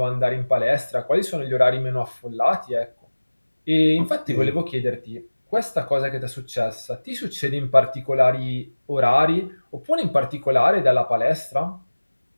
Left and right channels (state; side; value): inverted; both; correlation -1.00